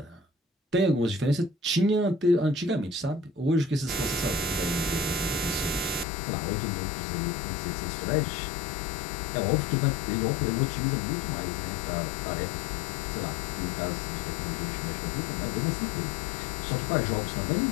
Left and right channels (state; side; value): drops out; right; at 6.1 s